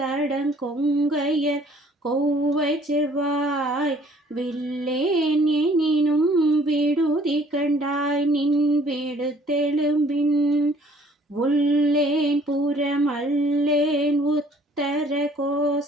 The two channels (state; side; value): normal; both; correlation 0.57